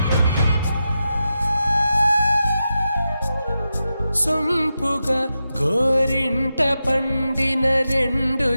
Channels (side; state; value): both; inverted; correlation -0.90